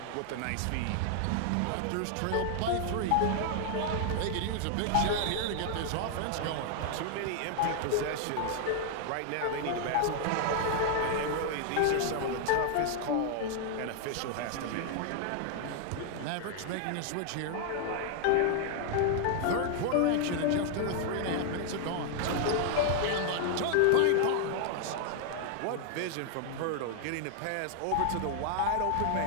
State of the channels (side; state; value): both; different; correlation 0.00